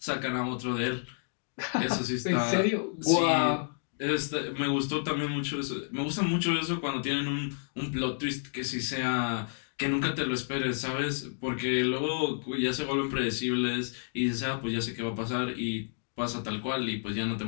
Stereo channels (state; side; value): silent; right; digital silence